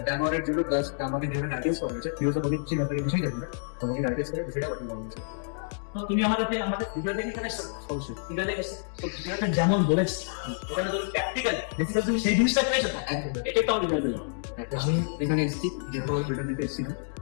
ড্যামোরের জন্য প্লাস আমাকে যেখানে অ্যাড্রেস করা হয়েছে ভিউজ অনেক কিছু ব্যাপারে কিছুই জানি না, তোমাকে অ্যাড্রেস করে বিষয়টা পাঠিয়ে দেওয়া হয়েছে। তো তুমি আমাদের ভিডিও দেখে এখানে এসেছো, অবশ্যই ভিডিও দেখে এসেছো। তো ভিডিওটা যেমন বলেছি ওখানে তুমি প্র্যাকটিক্যাল বেসিক্যালি তুমি সেই জিনিসটা পেয়েছো না, এটা একটা ভিডিও দিলাম। আমি এখানে এসেছি যেহেতু ভিডিও দিতে এসেছি না,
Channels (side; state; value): right; silent; digital silence